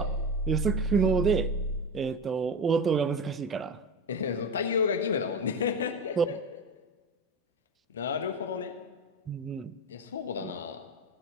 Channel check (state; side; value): normal; both; correlation 0.22